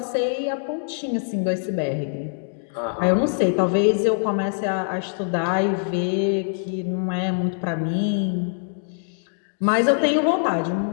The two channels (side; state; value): right; silent; digital silence